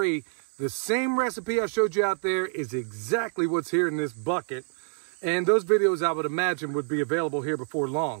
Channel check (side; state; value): left; silent; 60 dB below the other